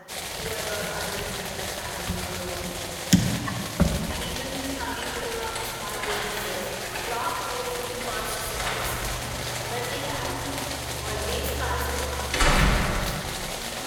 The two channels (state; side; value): identical; both; correlation 1.00